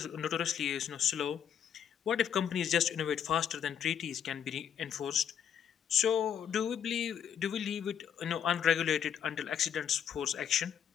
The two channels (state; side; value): quieter; right; 8.6 dB